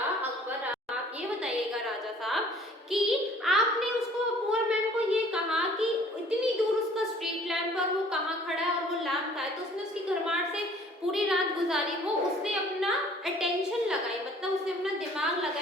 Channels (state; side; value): normal; both; correlation 0.54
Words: अकबर, आप ये बताइएगा राजा साहब कि आपने उसको, पुअर मैन को ये कहा कि इतनी दूर उसका स्ट्रीट लैम्प पर वो कहाँ खड़ा है और वो लैम्प का है, तो उसने उसकी घरमाट से पूरी रात गुजारी, वो उसने अपना अटेंशन लगाई, मतलब उसने अपना दिमाग